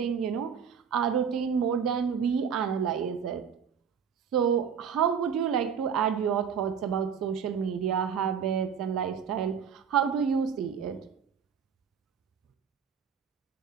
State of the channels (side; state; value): left; quieter; 7.2 dB